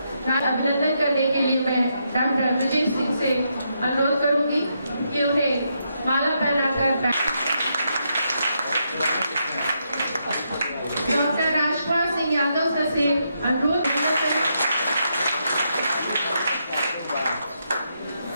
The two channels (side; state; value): both; inverted; correlation -0.80